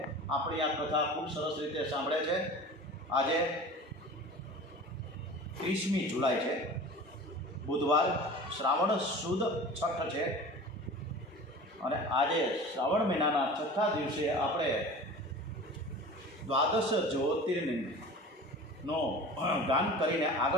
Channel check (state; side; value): normal; both; correlation 0.38